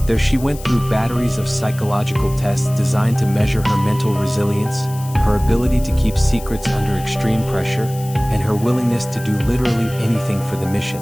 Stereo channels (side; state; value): left; noise; hiss, 17 dB below the sound